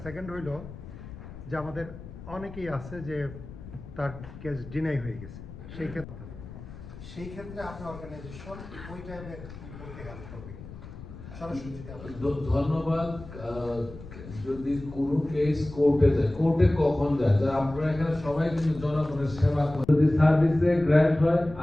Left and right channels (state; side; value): noise; left; rumble, 14 dB below the sound